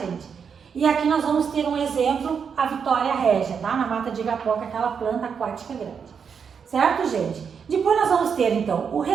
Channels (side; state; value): left; quieter; 6.6 dB